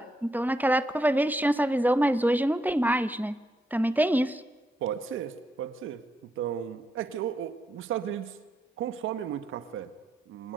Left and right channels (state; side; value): normal; both; correlation 0.80